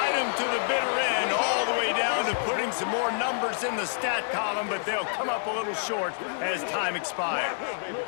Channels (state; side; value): silent; right; digital silence